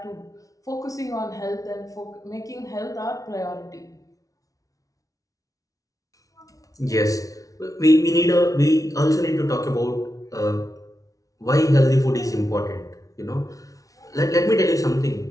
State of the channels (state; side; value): late; right; 0.17 ms